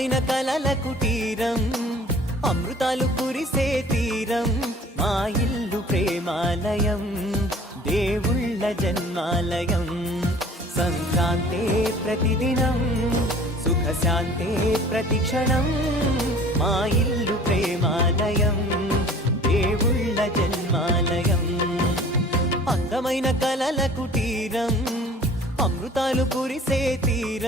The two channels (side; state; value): both; normal; correlation 0.48